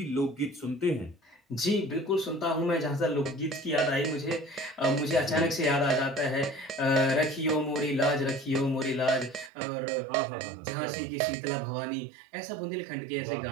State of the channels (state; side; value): drops out; left; at 9.5 s